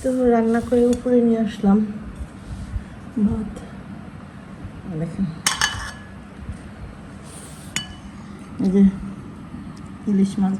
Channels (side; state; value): both; identical; correlation 1.00